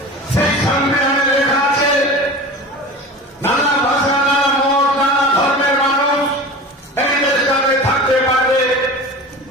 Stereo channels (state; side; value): normal; both; correlation 0.34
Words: সেই সংবিধানে লেখা আছে নানা ভাষা, নানা মত, নানা ধর্মের মানুষ এই দেশটাতে থাকতে পারবে,